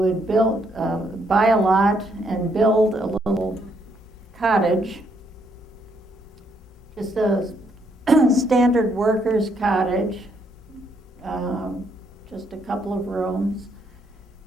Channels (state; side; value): normal; both; correlation 0.73